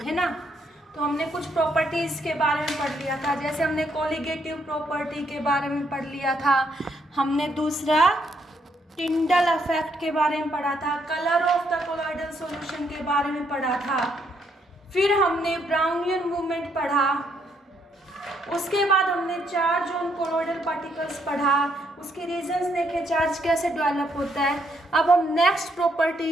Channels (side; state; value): both; normal; correlation 0.73